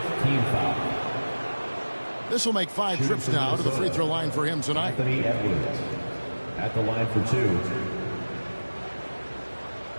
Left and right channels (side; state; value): both; inverted; correlation -1.00